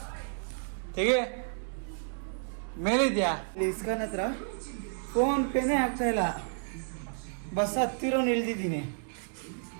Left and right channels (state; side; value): silent; left; digital silence